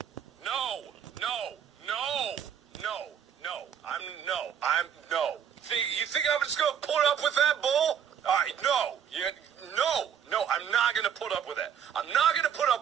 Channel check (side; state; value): left; quieter; 8.4 dB